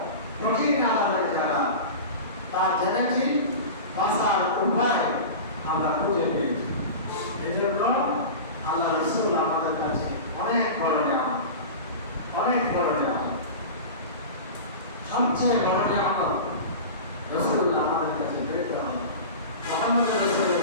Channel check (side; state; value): both; inverted; correlation -0.31